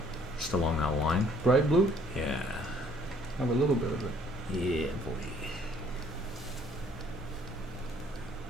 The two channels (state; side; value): normal; both; correlation 0.60